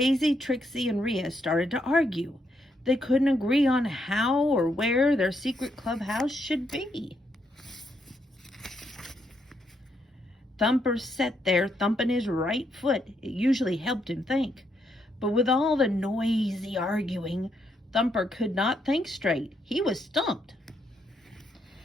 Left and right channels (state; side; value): normal; both; correlation 0.77